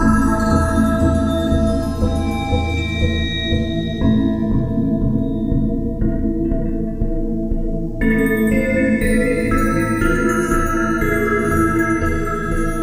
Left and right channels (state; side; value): identical; both; correlation 1.00